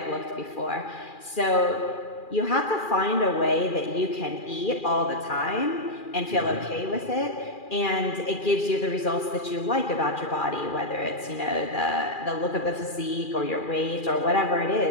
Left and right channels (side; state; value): right; late; 2.4 ms